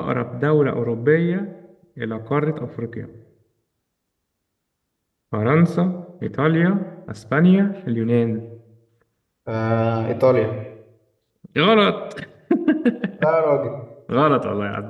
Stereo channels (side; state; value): both; identical; correlation 1.00